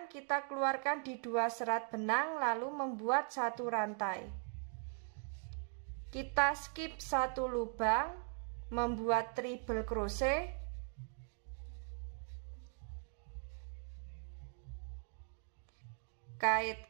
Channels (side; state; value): left; silent; 51 dB below the other